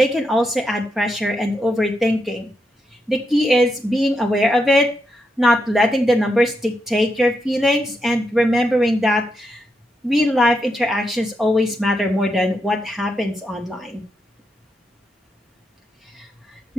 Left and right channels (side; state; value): both; normal; correlation 0.83